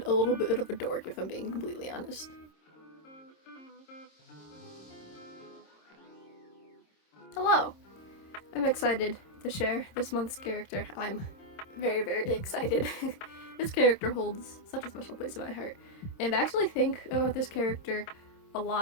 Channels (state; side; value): late; right; 26 ms